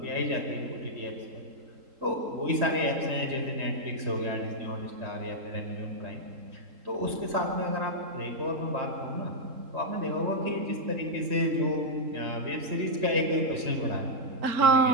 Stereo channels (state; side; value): late; left; 3.7 ms